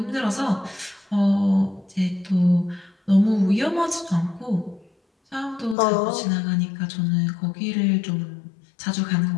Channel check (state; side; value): drops out; right; at 5.8 s